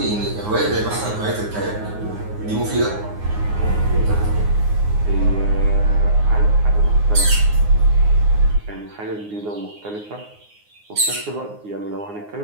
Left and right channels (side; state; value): left; late; 9.6 ms